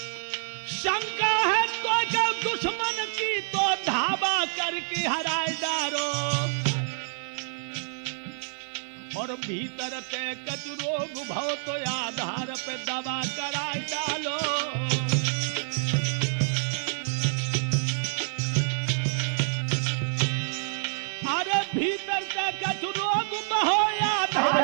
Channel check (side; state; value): left; silent; 60 dB below the other